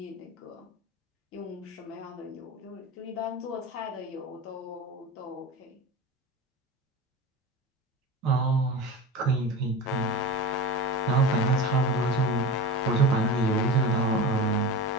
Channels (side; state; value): both; normal; correlation 0.30